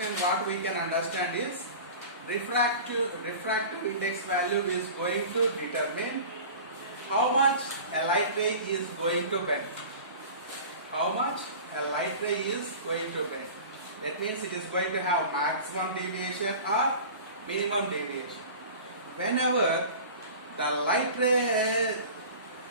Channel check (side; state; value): both; inverted; correlation -0.37